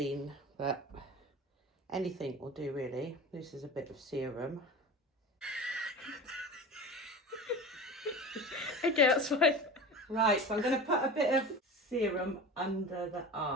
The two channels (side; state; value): both; normal; correlation 0.32